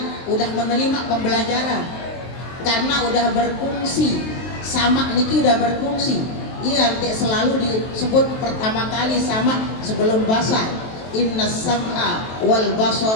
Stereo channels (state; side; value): late; right; 23 ms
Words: udah menerima pembelajaran karena udah berfungsi sama niki udah berfungsi. Iya nanti selalu disebut pertama kali sama sebelum basar. Inna sam'a wal